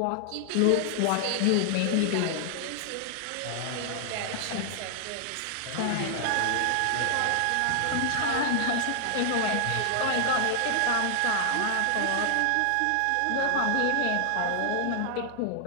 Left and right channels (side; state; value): both; different; correlation 0.00